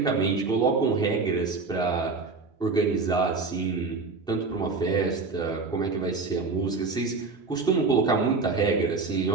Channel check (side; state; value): left; quieter; 4.2 dB